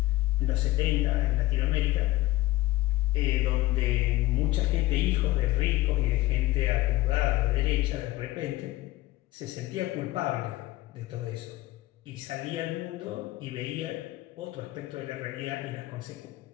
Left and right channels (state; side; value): quieter; right; 17.9 dB